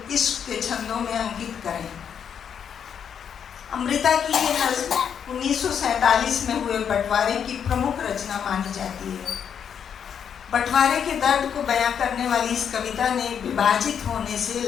इश्क के छंदों में अंकित करें। अमृता की ये नज़्म 1947 में हुए बंटवारे की प्रमुख रचना मानी जाती है। बंटवारे के दर्द को बयां करने वाली इस कविता ने विभाजित होने से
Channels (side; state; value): right; quieter; 7.9 dB